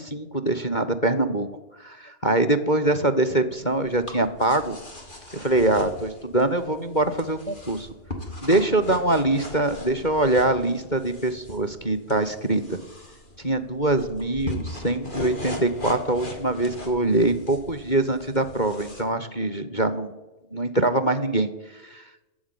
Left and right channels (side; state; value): right; late; 2.2 ms